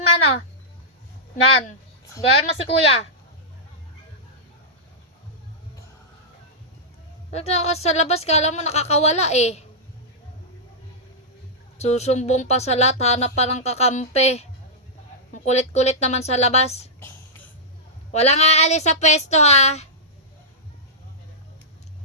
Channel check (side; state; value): both; normal; correlation -0.12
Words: Nan. Gaya mo si kuya. Nagtakas sa labas, kala mo nakakawala eh. Susumbong pa sa lahat, hanap pa ng kakampi. Ang kulit-kulit naman sa labas. Walang aalis sa pwesto ha.